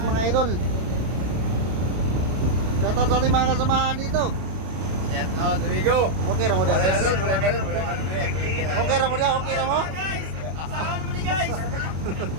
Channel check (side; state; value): left; late; 32 ms